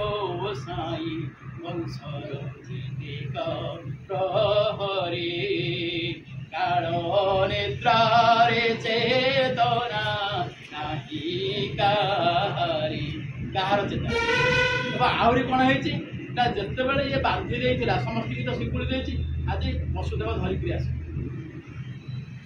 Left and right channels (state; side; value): identical; both; correlation 1.00